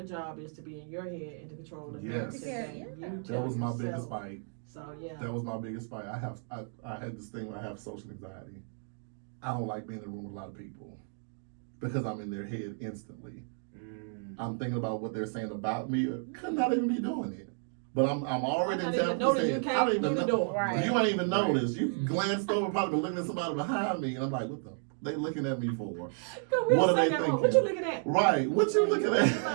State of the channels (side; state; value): left; silent; 56 dB below the other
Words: job is to be in your head and to control the Yes. narrative Yeah, that yeah. you That tell was my yourself. biggest fight. So yeah. That was my biggest fight. I had this thing where I have social anxiety. I don't like being in a room with a lot of people because I'm in their head instantly. I'm thinking about what they're saying about me. Could not even be doing it. But I'm already I in didn't even know that you I came don't through even the know. door. Right. You ain't even noticed. You Mhm. glanced over, probably been looking at somebody behind me, and I'm like, what the? They looking at me for? We What was are they thinking, thinking? what you looking at? Right. What you looking My at?